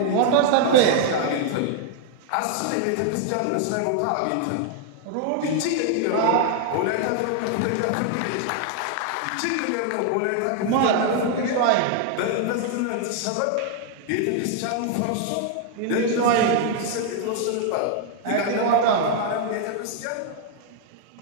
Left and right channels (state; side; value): different; both; correlation 0.00